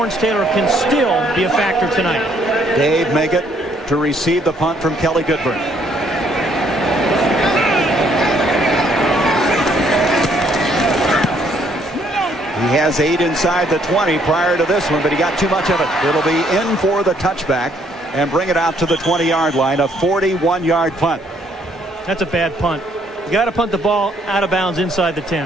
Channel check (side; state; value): both; normal; correlation 0.66